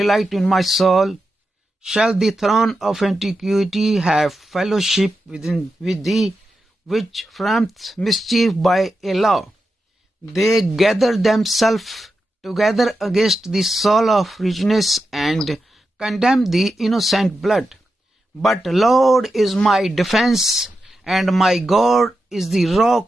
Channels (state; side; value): normal; both; correlation 0.89